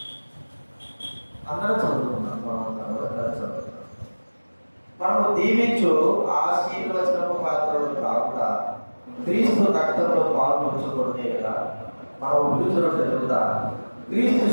అందరూ చదువుకున్నాం. మనము దీవించు ఆశీర్వచనము పాత్రలు కాకుండా క్రీస్తు రక్తంలో పాల్పంచుకునే కదా. మనం విడుదల జరుగుతా క్రీస్తు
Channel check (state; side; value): inverted; both; correlation -1.00